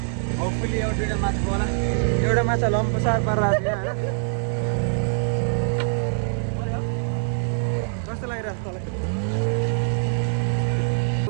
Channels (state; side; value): silent; left; 63 dB below the other